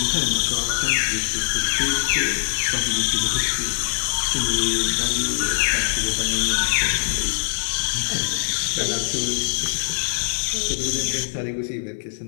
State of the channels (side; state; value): right; silent; 57 dB below the other